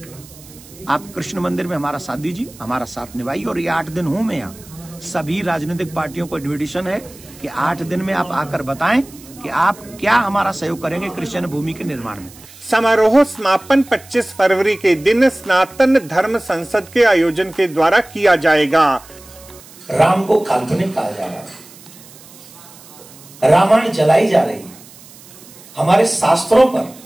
आप कृष्ण मंदिर में हमारा साथ दीजिए, हमारा साथ निभाइए। और ये 8 दिन हूं मैं यहाँ, सभी राजनीतिक पार्टियों को इन्विटेशन है कि 8 दिन में आप आकर बताएं कि आप क्या हमारा सहयोग करेंगे कृष्ण भूमि के निर्माण में। समारोह समापन 25 फरवरी के दिन सनातन धर्म संसद के आयोजन के द्वारा किया जाएगा। राम को काल्पनिक कहा जा रहा है, रामायण जलाई जा रही है, हमारे शास्त्रों पर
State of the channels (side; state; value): right; noise; hiss, 21 dB below the sound